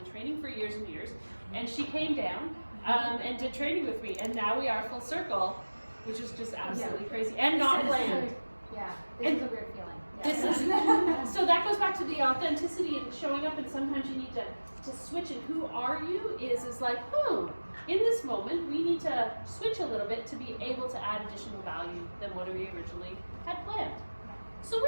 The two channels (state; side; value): inverted; both; correlation -1.00